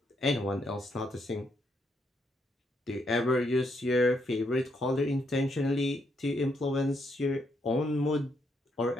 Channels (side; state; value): both; normal; correlation 0.77